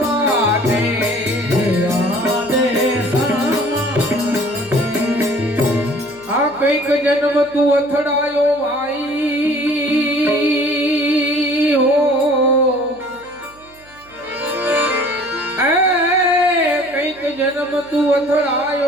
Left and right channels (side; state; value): right; noise; hum, 28 dB below the sound